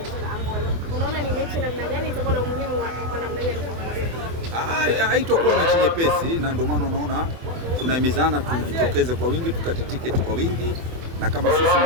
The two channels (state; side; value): late; left; 24 ms